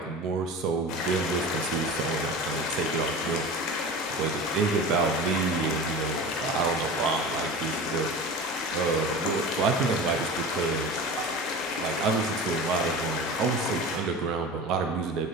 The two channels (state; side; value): normal; both; correlation 0.33